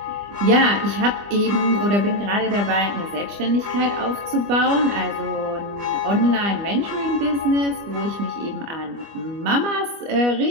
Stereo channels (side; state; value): left; late; 25 ms